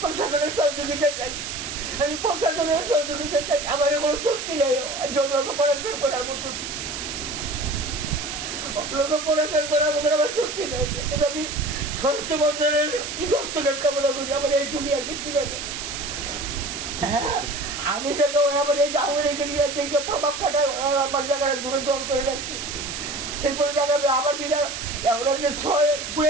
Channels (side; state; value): right; noise; hiss, 6 dB below the sound